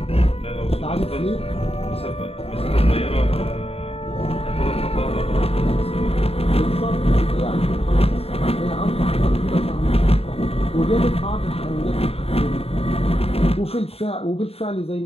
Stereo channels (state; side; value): late; right; 0.29 ms